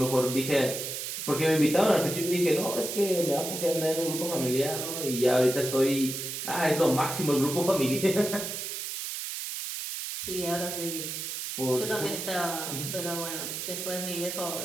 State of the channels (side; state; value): right; noise; hiss, 5 dB below the sound